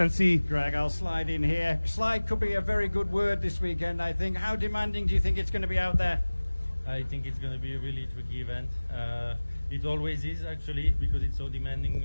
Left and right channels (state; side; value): inverted; both; correlation -1.00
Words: Greg, I'll slide in here. Slide could be a very good word this weekend, I think. How demanding do you think it's going to be out there? I think it's going to be a really tricky event. It always is, actually, because it's so demanding